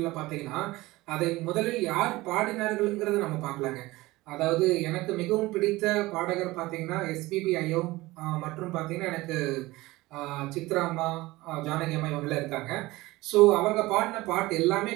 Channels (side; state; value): left; quieter; 19.8 dB